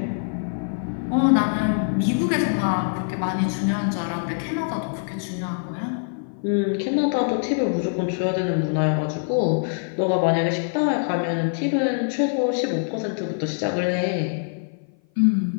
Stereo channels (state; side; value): silent; right; 56 dB below the other